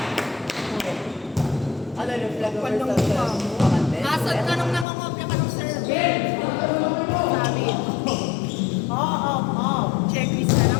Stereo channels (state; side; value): drops out; right; at 4.9 s